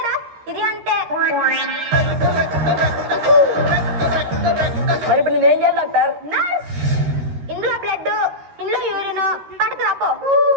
ఇది అంటే మరి ఇప్పుడు నేనేం చేయాలి డాక్టర్? నర్స్, ఇందులో బ్లడ్, ఇందులో యూరిన్ పడకు రాపో.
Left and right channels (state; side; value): late; left; 13 ms